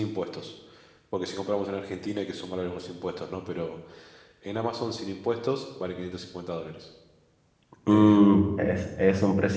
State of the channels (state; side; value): identical; both; correlation 1.00